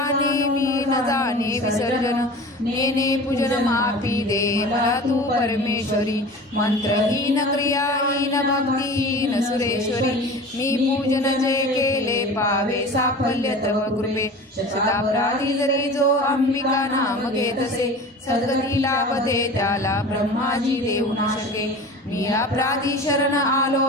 मी न जाने विसर्जन नेने पूजन माफी दे मला तू परमेश्वरी मंत्रहीन क्रियाहीन भक्तिहीन सुरेश्वरी मी पूजन जे केले पावे साफल्य तव कृपे शतापराधी जरी जो अंबिका नाम घेतसे सद्गती लाभते त्याला ब्रह्माजी देऊ न शके मी अपराधी शरण आलो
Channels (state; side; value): normal; both; correlation 0.37